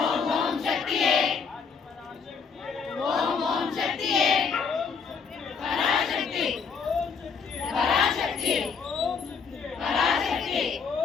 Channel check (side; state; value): right; quieter; 5.7 dB